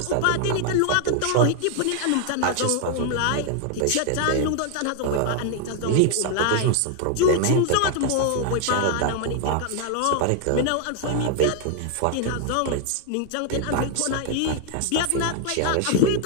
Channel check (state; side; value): different; both; correlation 0.00